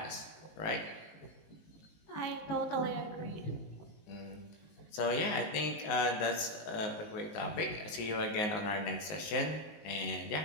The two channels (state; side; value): late; right; 19 ms